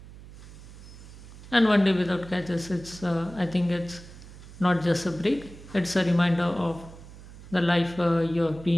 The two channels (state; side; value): noise; right; hum, 17 dB below the sound